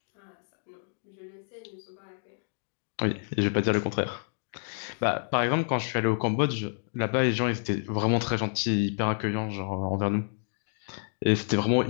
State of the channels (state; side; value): silent; right; 59 dB below the other